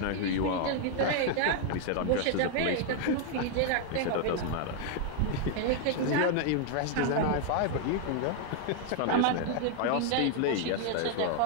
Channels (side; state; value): both; different; correlation 0.00